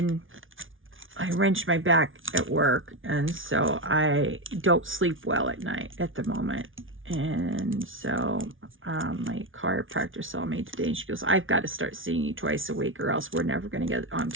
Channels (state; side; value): late; left; 0.57 ms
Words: wrenched my back at work, and so I don't sleep well at night at the moment. And so my chiropractor saw me today, and she goes, I've got to start seeing you twice a week, or else we're never going to get on